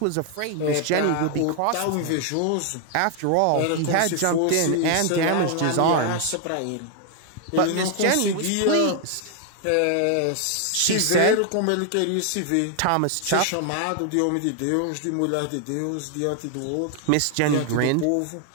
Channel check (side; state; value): both; different; correlation 0.00